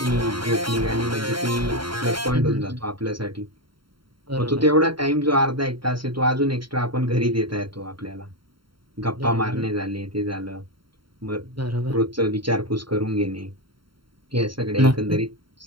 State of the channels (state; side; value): late; left; 0.73 ms